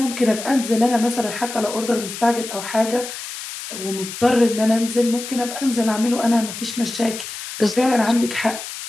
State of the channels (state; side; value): noise; left; hiss, 9 dB below the sound